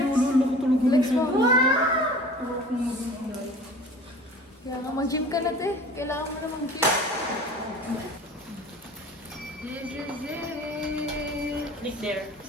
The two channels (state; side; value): normal; both; correlation 0.43